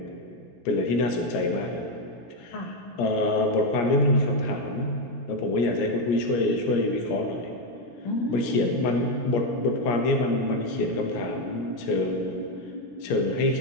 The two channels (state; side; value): late; right; 17 ms